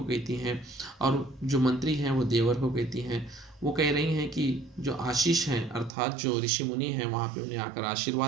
कहती हैं, और जो मंत्री हैं वो देवर को कहती हैं। वो कह रही हैं कि जो आशीष हैं अर्थात जो ऋषि मुनि हैं वहाँ पे उन्हें आकर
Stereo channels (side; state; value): left; drops out; at 5.9 s